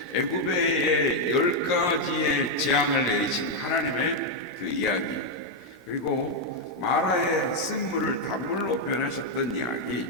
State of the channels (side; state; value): both; normal; correlation 0.01